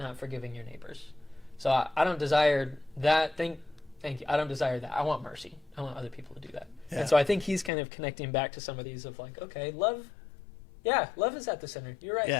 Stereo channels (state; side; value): drops out; right; at 7.7 s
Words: forgiving your neighbors. So I don't desire that. Thank you. I don't desire that. I want mercy. I want other people to do that. Yeah. And so I think he's kind of connecting back to some of these of like, okay, love. Yeah, love is at the center. You're right.